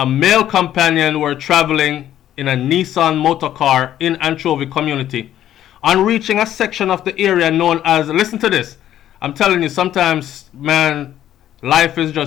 male companion were traveling in a Nissan motor car in Anchovy community. On reaching a section of the area known as, listen to this, I'm telling you, sometimes, man, life is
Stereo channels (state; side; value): quieter; right; 11.8 dB